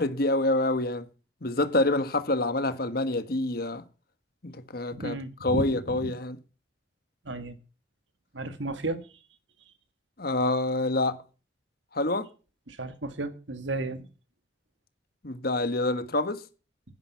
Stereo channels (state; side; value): normal; both; correlation 0.04